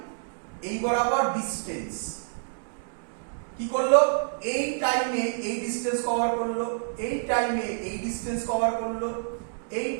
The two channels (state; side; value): silent; left; digital silence